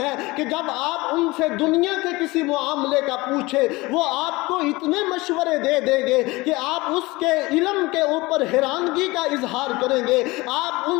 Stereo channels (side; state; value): right; quieter; 21.9 dB